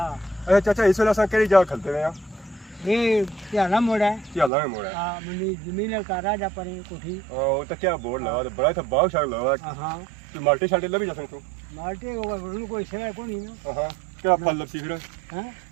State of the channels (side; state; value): left; drops out; at 4.5 s